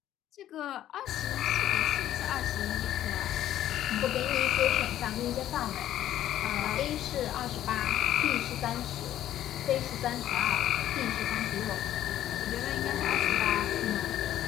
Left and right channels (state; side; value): quieter; right; 12.2 dB